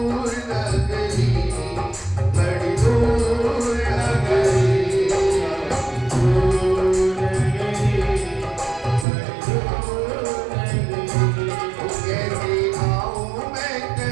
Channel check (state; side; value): drops out; left; at 9.1 s